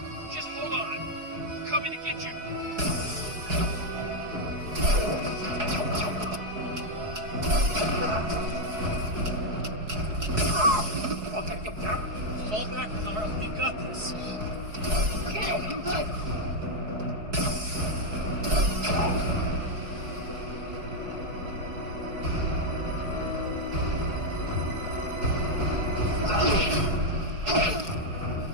just hold on. We're coming to get you. Fall back, Carl. We've got this. Okay, I'm good.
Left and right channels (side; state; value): left; late; 4.7 ms